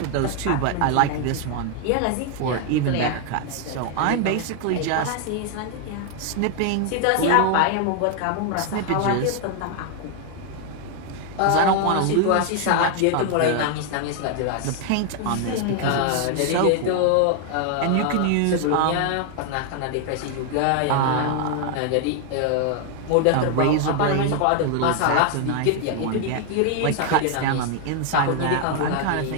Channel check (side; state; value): both; different; correlation 0.00